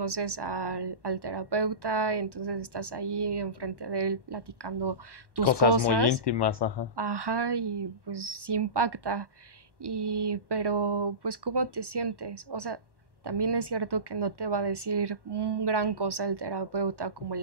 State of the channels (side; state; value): left; late; 1.1 ms